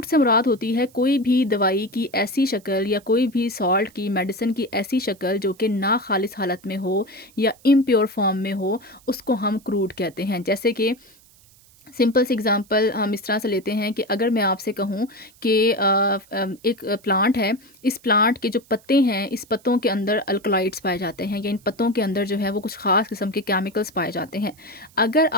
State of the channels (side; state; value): right; noise; hiss, 28 dB below the sound